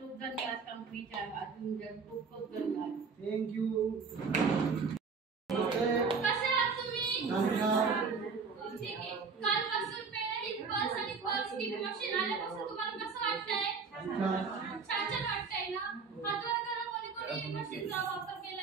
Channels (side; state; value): left; quieter; 5.1 dB